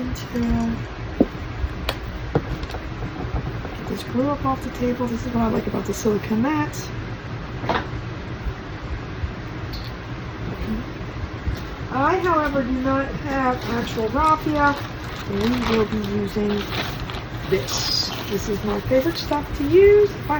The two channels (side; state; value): both; identical; correlation 1.00